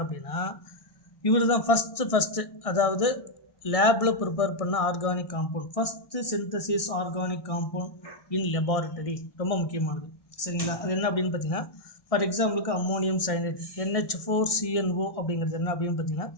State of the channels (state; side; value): late; right; 1.6 ms